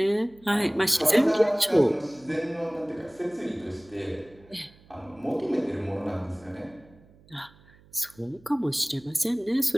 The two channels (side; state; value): right; noise; hum, 27 dB below the sound